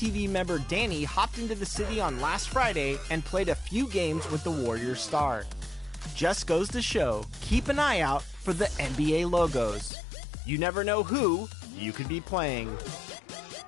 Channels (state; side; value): drops out; right; at 9.9 s